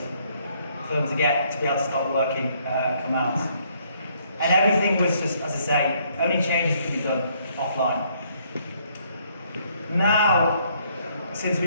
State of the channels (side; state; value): both; inverted; correlation -0.67